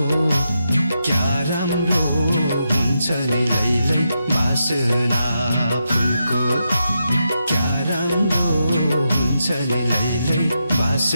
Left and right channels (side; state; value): both; inverted; correlation -0.85